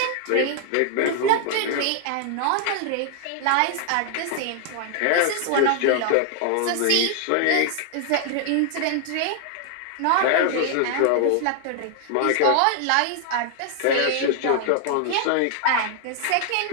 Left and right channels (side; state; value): both; different; correlation 0.00